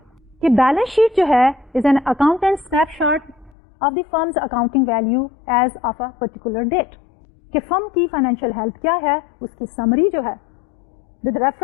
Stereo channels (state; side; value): drops out; right; at 3.5 s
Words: कि बैलेंस शीट जो है is an accountant snapshot of the firm's accounting value as of a particular date. कि फर्म की फाइनेंशियल हेल्थ क्या है उसकी समरी जो है with